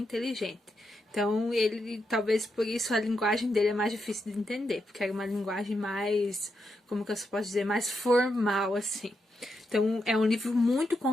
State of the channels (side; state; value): both; normal; correlation 0.83